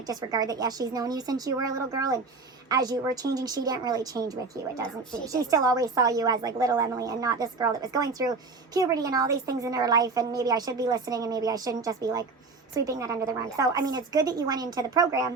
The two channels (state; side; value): quieter; left; 4.1 dB